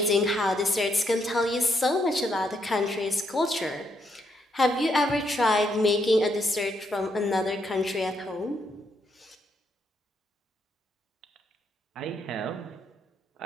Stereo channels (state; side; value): normal; both; correlation 0.76